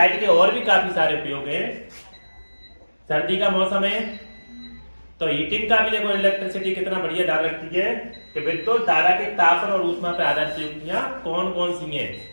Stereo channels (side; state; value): both; inverted; correlation -1.00